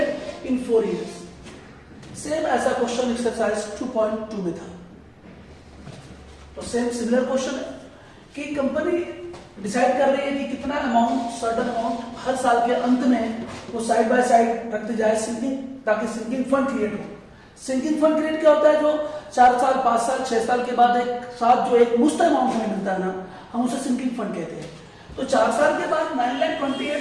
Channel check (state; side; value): identical; both; correlation 1.00